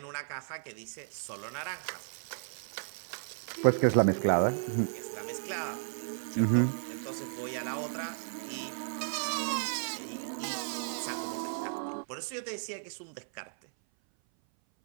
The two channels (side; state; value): left; silent; 55 dB below the other